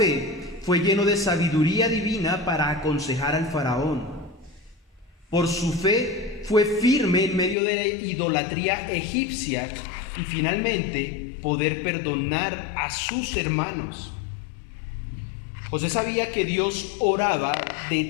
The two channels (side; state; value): right; drops out; at 7.6 s